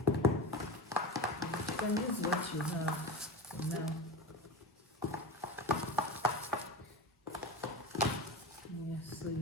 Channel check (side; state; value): both; normal; correlation 0.24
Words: You can use what you have for now. Yeah, so